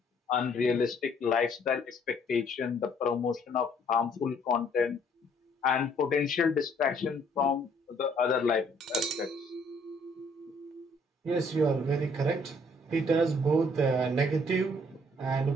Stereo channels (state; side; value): normal; both; correlation 0.63